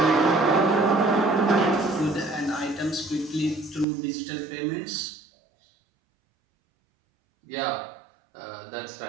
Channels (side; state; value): left; drops out; at 3.9 s